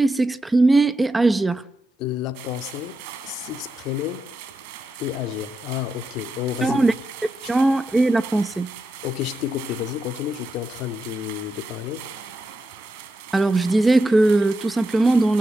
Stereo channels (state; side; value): normal; both; correlation 0.87